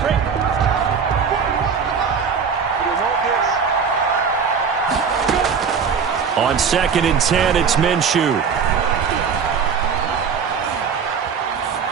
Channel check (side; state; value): left; quieter; 6.2 dB